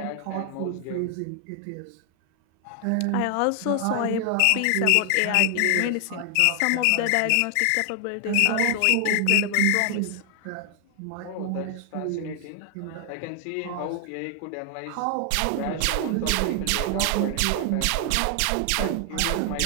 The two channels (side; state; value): both; different; correlation 0.00